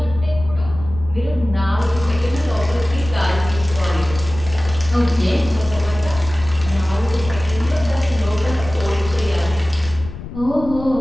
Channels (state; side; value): noise; left; rumble, 11 dB below the sound